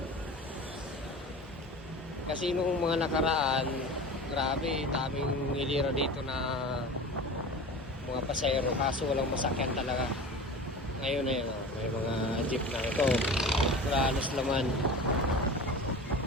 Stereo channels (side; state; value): both; normal; correlation 0.34